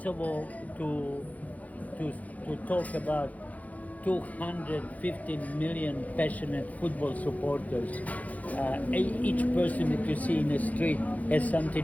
to talk about 215 million passionate football supporters. Each person that you see in the street has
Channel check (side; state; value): right; late; 0.074 ms